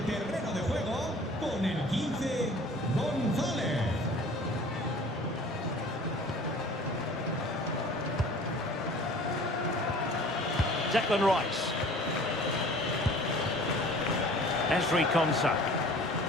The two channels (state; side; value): normal; both; correlation 0.47